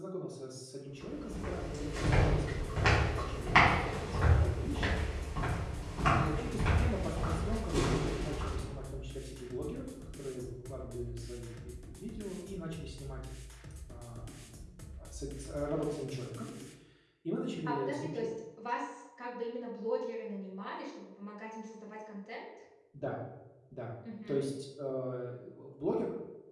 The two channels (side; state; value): both; identical; correlation 1.00